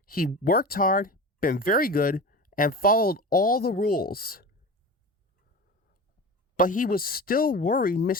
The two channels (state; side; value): normal; both; correlation 0.31